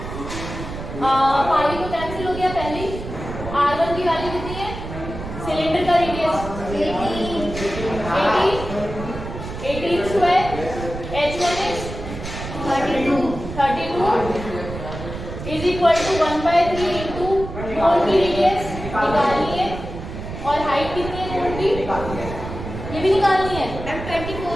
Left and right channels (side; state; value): right; noise; rumble, 9 dB below the sound